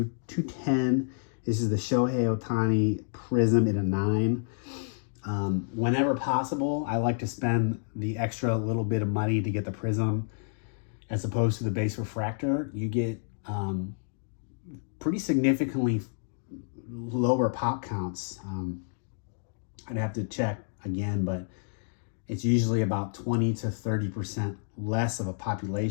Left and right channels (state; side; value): silent; right; digital silence